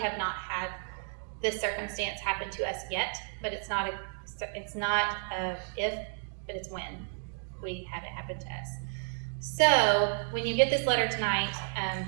not had this circumstance happen to us yet, but it's not a if, but it's when we have it happen to us. So when you get this letter tonight,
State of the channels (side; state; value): left; silent; 56 dB below the other